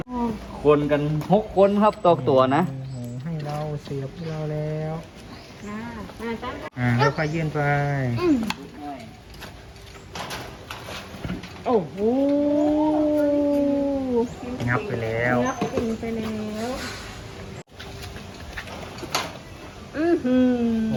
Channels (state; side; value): identical; both; correlation 1.00